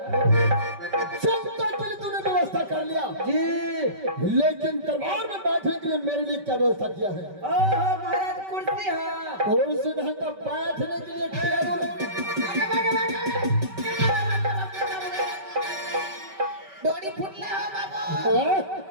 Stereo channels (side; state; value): left; late; 5.2 ms